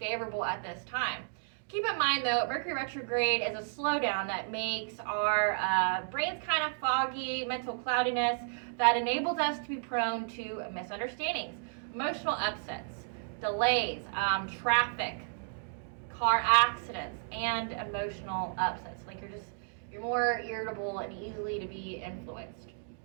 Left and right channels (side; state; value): left; silent; digital silence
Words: at this time. Keep in mind, though, Mercury retrograde is a slowdown that makes our brains kind of foggy, mental cloudiness, that enables us to be prone to misunderstandings, emotional upsets, delays, traffic, car accidents, and emotional upsets. Like you're more irritable and easily to be influenced.